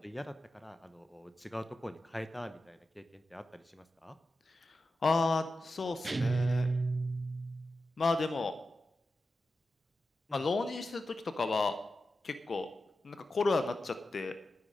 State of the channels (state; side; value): normal; both; correlation 0.91